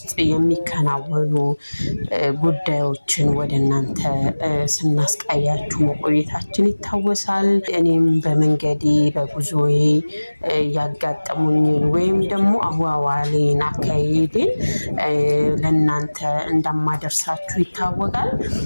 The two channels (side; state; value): both; inverted; correlation -1.00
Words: የሚከናወኑ ጉዳዮችን ወደ እናንተ ስናስቃያችሁ መቆየታችን ይታወሳል። እኔም በመንገዴ በጉዞዬ ያጋጠሙኝን ወይም ደግሞ አዋዋሌን አካሄዴን ለእናንተ እንደማደርሳችሁ ይታወቃል።